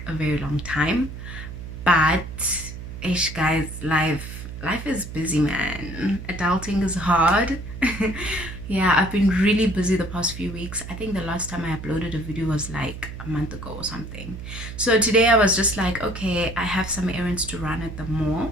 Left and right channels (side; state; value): right; noise; hum, 10 dB below the sound